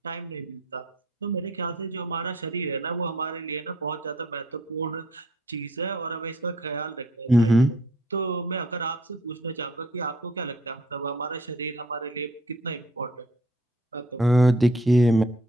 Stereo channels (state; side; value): normal; both; correlation 0.59